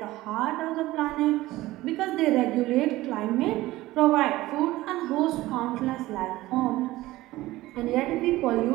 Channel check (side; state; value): left; quieter; 17.6 dB